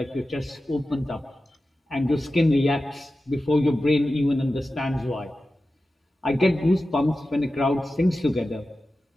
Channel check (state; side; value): normal; both; correlation 0.93